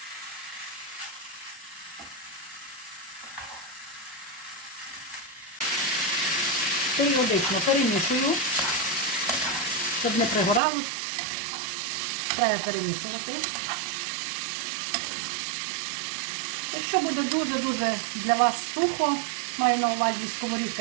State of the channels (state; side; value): drops out; left; at 10.6 s